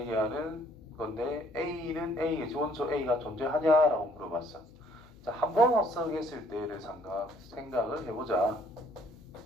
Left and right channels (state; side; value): noise; left; hum, 24 dB below the sound